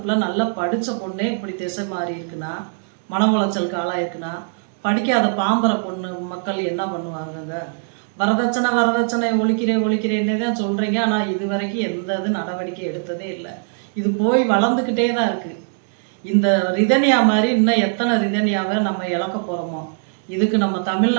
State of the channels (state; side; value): silent; left; digital silence